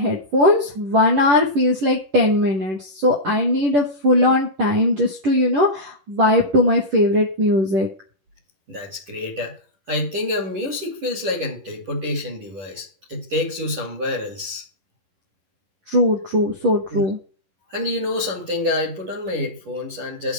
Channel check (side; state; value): left; late; 11 ms